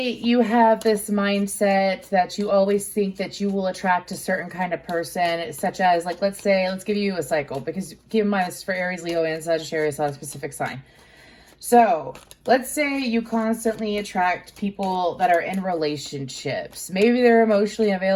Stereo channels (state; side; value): identical; both; correlation 1.00